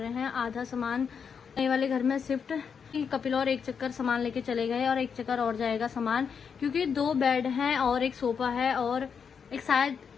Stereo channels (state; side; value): quieter; right; 6.6 dB